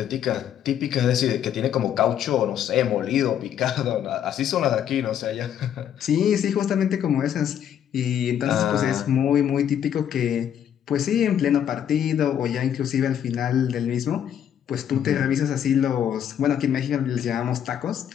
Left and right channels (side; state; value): right; quieter; 9.6 dB